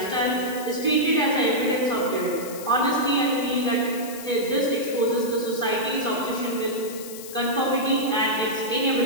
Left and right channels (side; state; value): left; noise; hiss, 13 dB below the sound